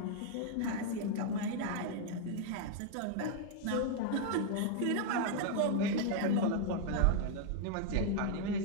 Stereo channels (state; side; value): different; both; correlation 0.00